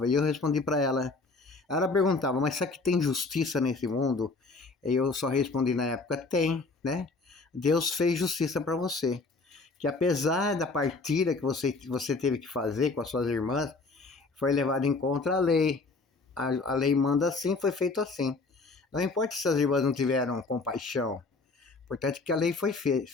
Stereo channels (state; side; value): quieter; right; 3.8 dB